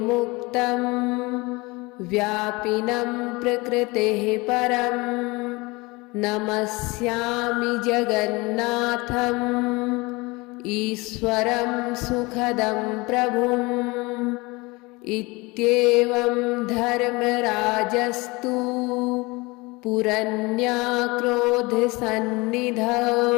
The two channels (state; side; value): quieter; right; 24.3 dB